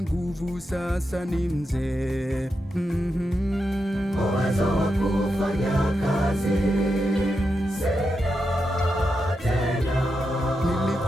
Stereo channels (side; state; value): both; normal; correlation 0.86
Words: nguvu, sasa ni mzee. Uwezo wa kufanya kazi sina tena.